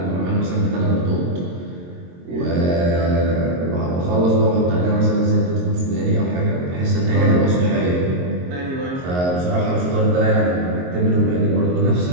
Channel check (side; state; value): left; late; 22 ms